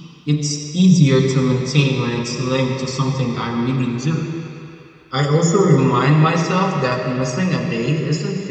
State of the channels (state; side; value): identical; both; correlation 1.00